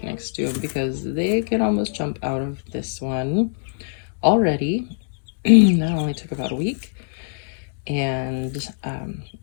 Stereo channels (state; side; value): silent; right; digital silence